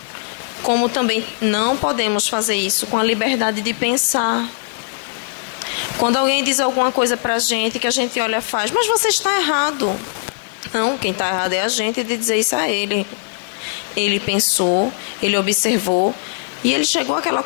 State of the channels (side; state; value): right; silent; 59 dB below the other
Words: Como também não podemos fazer isso com a liberdade de pensar. Quando alguém diz alguma coisa pra gente, que a gente olha e faz, mas você está errado. Não, quem está errado é a gente de dizer isso a ele. Ele pensou, ele observou e ele chegou àquela